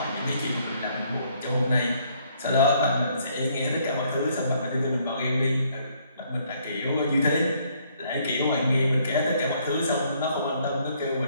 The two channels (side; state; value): both; inverted; correlation -0.67